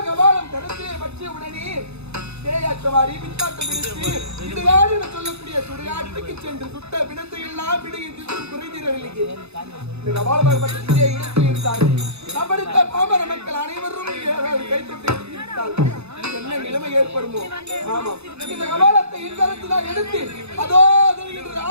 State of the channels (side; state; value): left; late; 0.80 ms